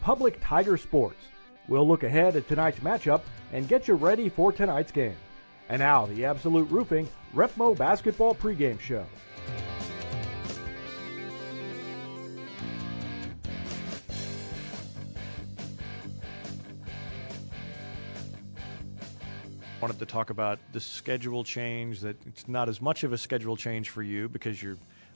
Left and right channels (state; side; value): inverted; both; correlation -1.00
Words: Tiger Sports. We'll look ahead at tonight's matchup and get you ready for tonight's game. And now, the Absolute Roofing Repmo Basketball pregame show. Wanted to talk about the schedule change, that it's not as much of a schedule change for you because you're